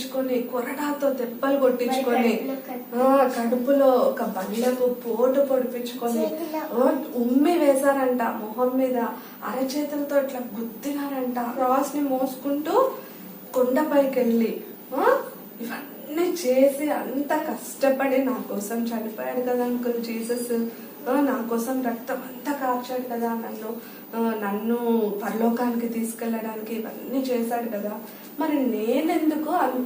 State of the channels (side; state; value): both; identical; correlation 1.00